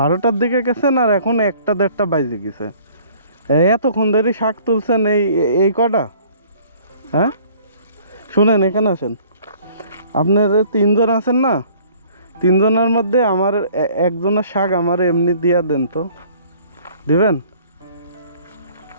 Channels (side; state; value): both; inverted; correlation -0.54